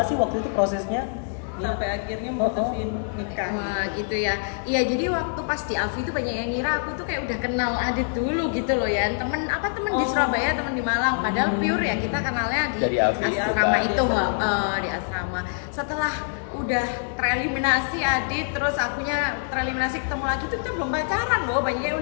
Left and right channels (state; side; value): silent; right; 61 dB below the other